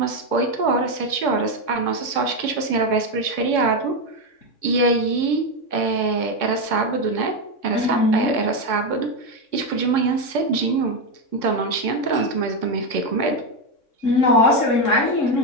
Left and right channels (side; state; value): right; late; 3.6 ms